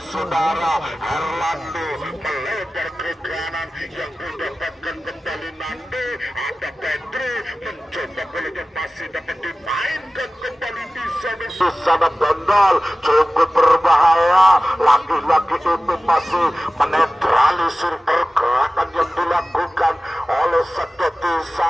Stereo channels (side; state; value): both; normal; correlation 0.96